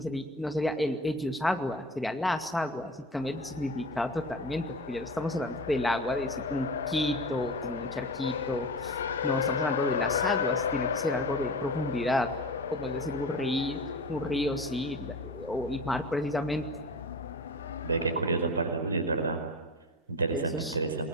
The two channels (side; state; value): both; normal; correlation 0.31